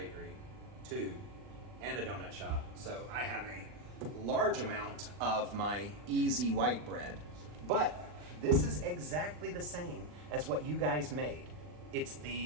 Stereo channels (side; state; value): left; late; 40 ms